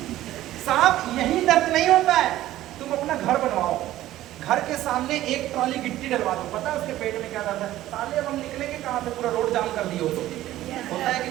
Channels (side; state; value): left; quieter; 14.6 dB